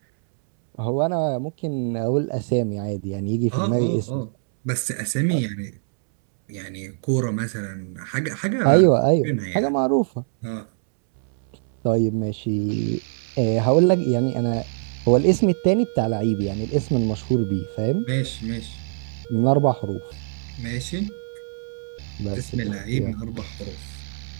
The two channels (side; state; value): left; silent; 63 dB below the other